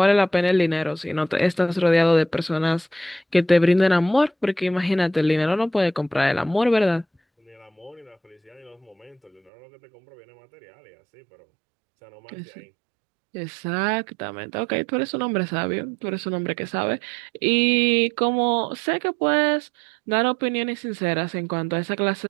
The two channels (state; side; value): drops out; left; at 9.5 s